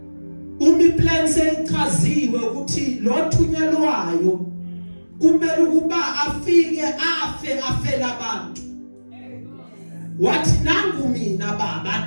Plans echaziwe ukuthi lo thunyelwayo kumele ukuba afike afela abantu. Wathi nangu mina baba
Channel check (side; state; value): both; inverted; correlation -1.00